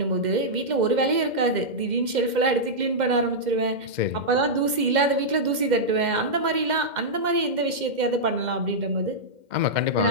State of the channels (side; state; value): left; late; 2.1 ms